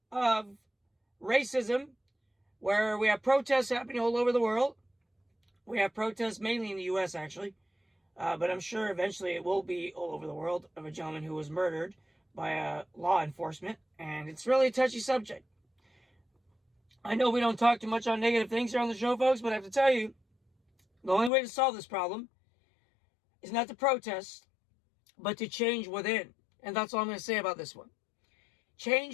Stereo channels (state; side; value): drops out; right; at 21.3 s